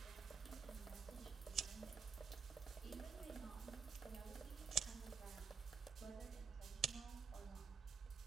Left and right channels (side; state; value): left; quieter; 6.0 dB